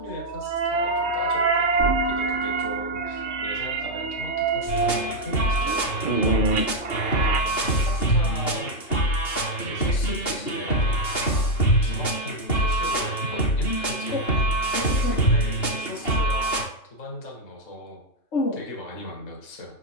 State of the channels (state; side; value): late; right; 2.8 ms